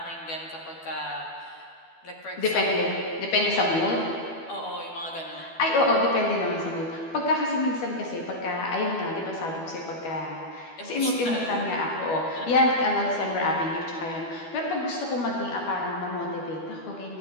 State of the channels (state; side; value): late; right; 12 ms